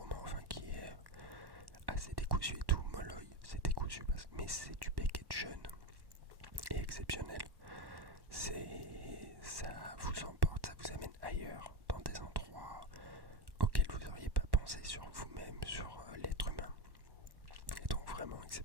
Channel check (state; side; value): late; left; 1.1 ms